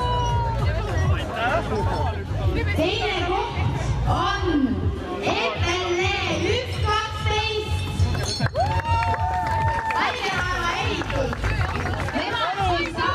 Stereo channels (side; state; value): both; identical; correlation 1.00